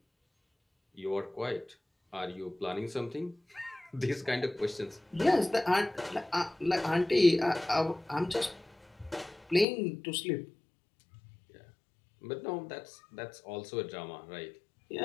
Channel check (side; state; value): right; drops out; at 9.7 s